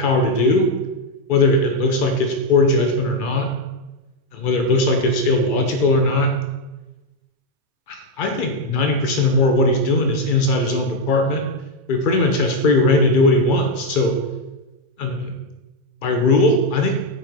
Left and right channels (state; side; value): late; right; 2.4 ms